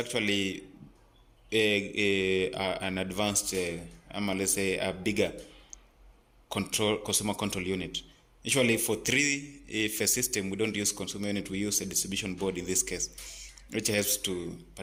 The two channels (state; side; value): identical; both; correlation 1.00